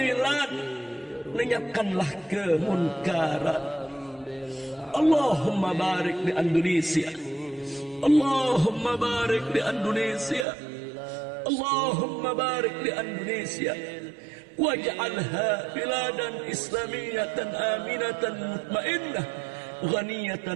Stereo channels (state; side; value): drops out; left; at 10.5 s